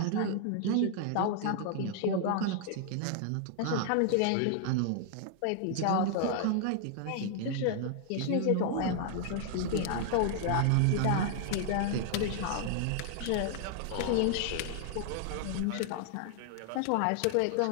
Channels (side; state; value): both; different; correlation 0.00